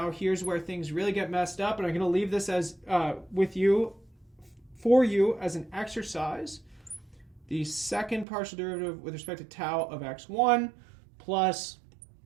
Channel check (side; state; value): left; drops out; at 8.2 s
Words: here's where things really get messed up. And I'm going to leave this as for you as an exercise. The second partial derivative with respect to tau of x1 plus